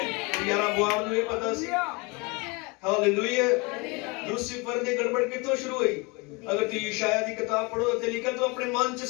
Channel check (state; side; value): quieter; right; 28.2 dB